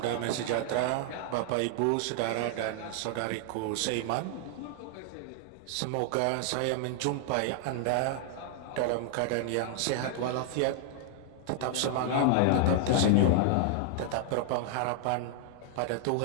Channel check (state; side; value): different; both; correlation 0.00